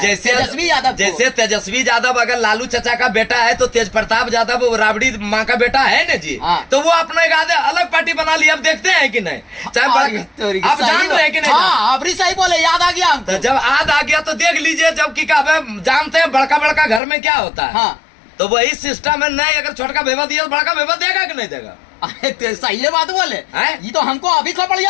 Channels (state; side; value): drops out; right; at 17.0 s